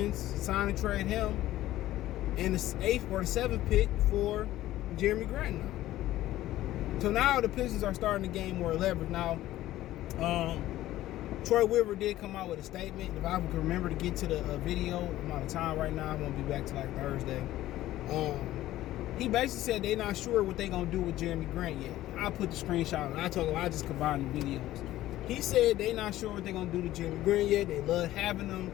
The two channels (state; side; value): quieter; right; 14.8 dB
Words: sign and trade him, and the 8th or the 7th pick for Jerami Grant now. So now the Pistons are starting to gain more leverage. Now, Troy Weaver did come out with a statement. If I can remember to get to the video, I'm out of time right now. I won't be back till like Thursday. He basically said they're not sure what they're going to do with Jerami Grant yet. I put the screenshot and I told him I just combined the videos. He said they're not sure what they're going to do to Jerami Grant yet. They love having him.